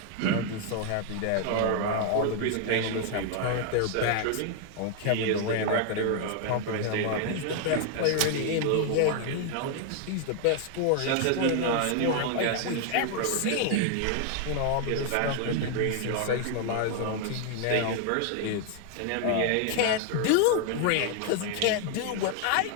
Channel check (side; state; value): both; different; correlation 0.00